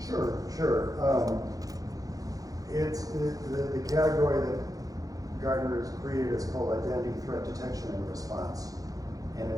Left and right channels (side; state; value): left; late; 0.17 ms